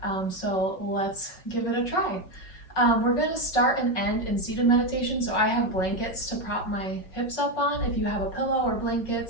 So let's give it a try. We're going to start and end in seated meditation, so I have blankets to prop my hips up on. If you have a pillow or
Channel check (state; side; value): late; right; 5.5 ms